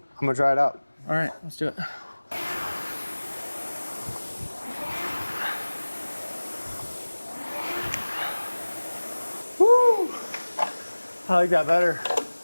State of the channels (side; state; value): both; inverted; correlation -1.00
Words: I'm gonna try it out. All right, let's do it. Woo! I like that better.